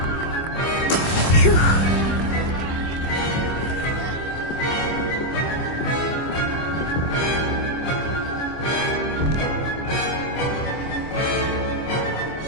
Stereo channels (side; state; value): right; late; 25 ms